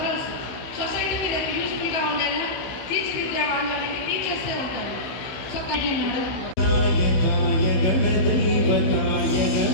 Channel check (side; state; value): right; late; 16 ms